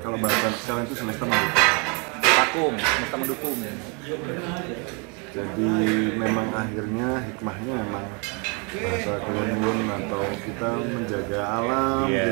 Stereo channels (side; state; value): left; quieter; 33.2 dB